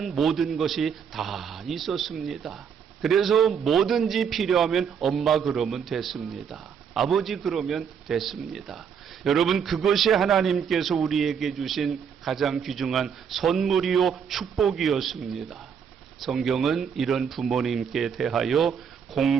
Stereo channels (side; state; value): left; quieter; 7.3 dB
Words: 모든 것이 다 있었습니다. 그래서 뭐든지 필요하면 엄마 그러면 됐습니다. 아버지 그러면 됐습니다. 여러분, 그것이 하나님께서 우리에게 주신 가장 귀중한 선물이요 축복이었습니다. 성경은 이런 부모님께 대하여